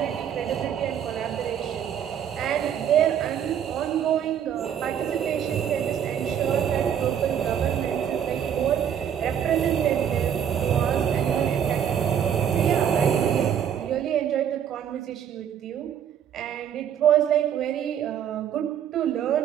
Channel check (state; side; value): quieter; left; 9.0 dB